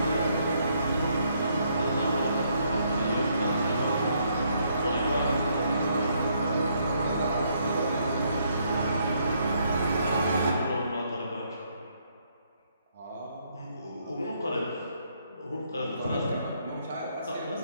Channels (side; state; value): both; inverted; correlation -0.71